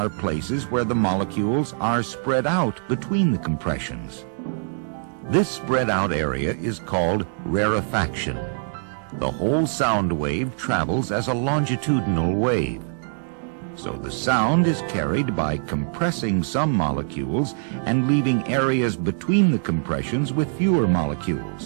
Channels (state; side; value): silent; left; digital silence